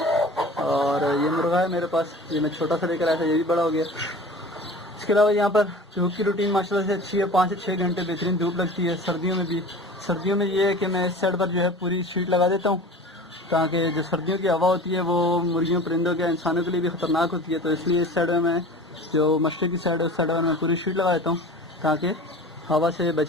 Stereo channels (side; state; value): both; normal; correlation 0.38